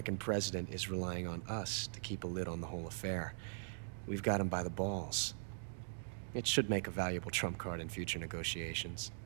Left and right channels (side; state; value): left; silent; digital silence